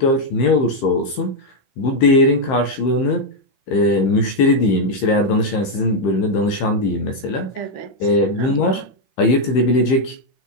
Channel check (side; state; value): right; late; 15 ms